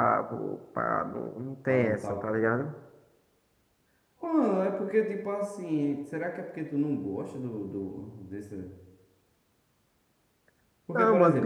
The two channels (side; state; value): both; identical; correlation 1.00